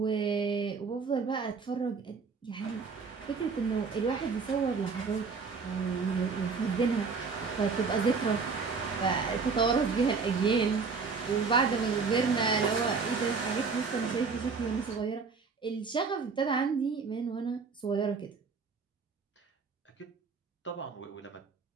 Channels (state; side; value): quieter; left; 4.9 dB